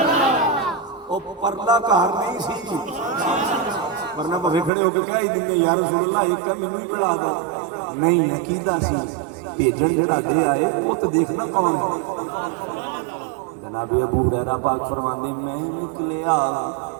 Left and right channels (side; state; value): left; drops out; at 4.7 s